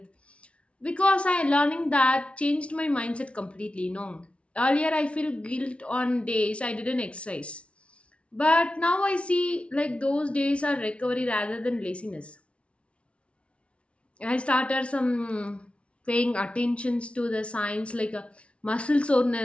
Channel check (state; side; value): late; right; 0.061 ms